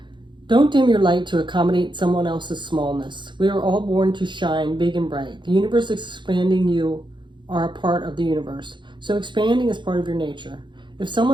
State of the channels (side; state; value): left; late; 0.23 ms